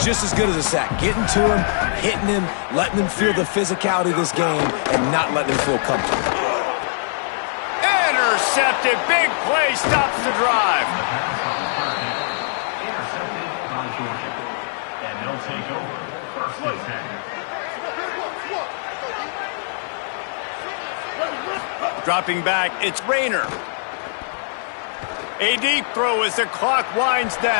just as good as a sack. Getting to him, hitting him, letting him feel the physicality of this game, and not letting him feel comfortable. Intercepted. Big play stops the drive. Intercepted by Georgia. And they'll take over first and 10. Dropping back, it's Rayner. A deep throw as the clock winds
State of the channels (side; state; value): right; silent; 56 dB below the other